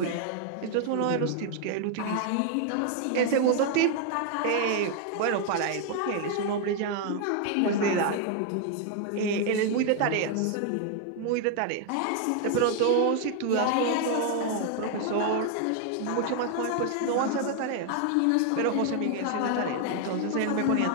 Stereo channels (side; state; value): both; different; correlation 0.00